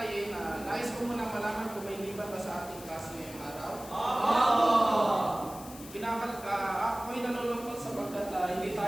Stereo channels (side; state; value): left; noise; hiss, 16 dB below the sound